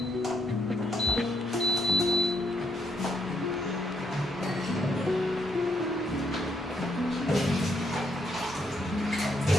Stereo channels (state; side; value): normal; both; correlation 0.75